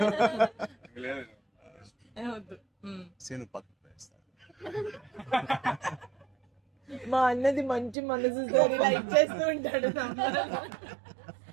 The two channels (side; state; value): left; drops out; at 8.0 s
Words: లేదు. వద్దు. సీను పక్కన వేస్తాను. మా అన్నది మంచి మనసుతో లైక్ చేస్తూ ఉంటాడు.